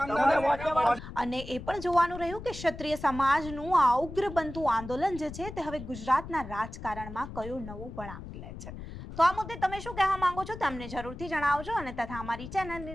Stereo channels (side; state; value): left; noise; rumble, 11 dB below the sound